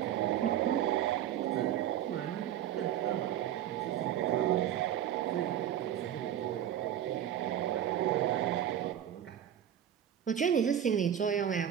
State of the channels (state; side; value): quieter; left; 10.5 dB